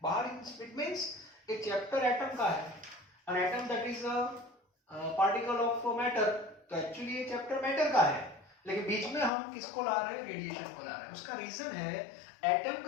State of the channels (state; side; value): drops out; right; at 9.3 s